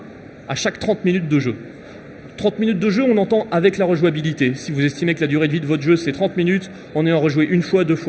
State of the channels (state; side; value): identical; both; correlation 1.00